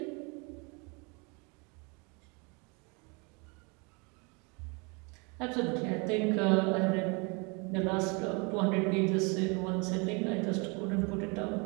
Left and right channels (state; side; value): quieter; left; 30.9 dB